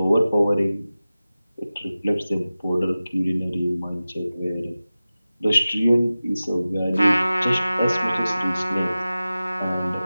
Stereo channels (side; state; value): both; inverted; correlation -0.96